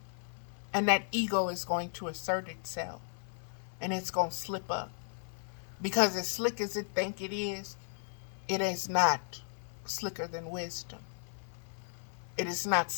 And that ego is going to assert itself. And it's going to slip up. Because as slick as it think it is not slicker than wisdom. It is not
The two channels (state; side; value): silent; right; 54 dB below the other